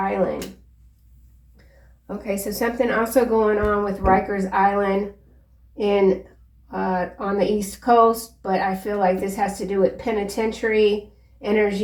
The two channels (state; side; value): identical; both; correlation 1.00